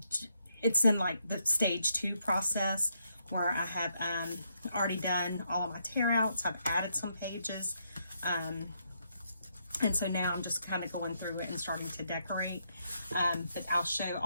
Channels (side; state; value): both; inverted; correlation -0.77